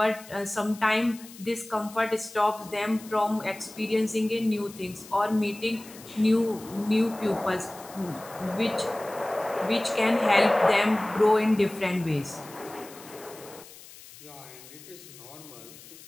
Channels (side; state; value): left; noise; hiss, 19 dB below the sound